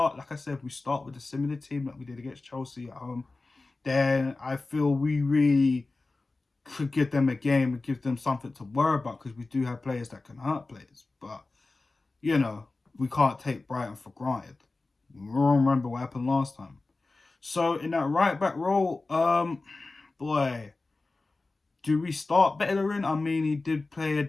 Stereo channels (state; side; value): quieter; right; 3.4 dB